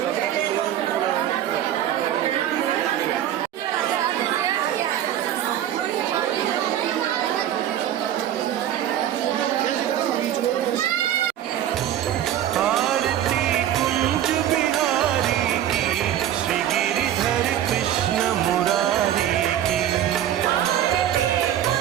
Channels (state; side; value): quieter; left; 11.3 dB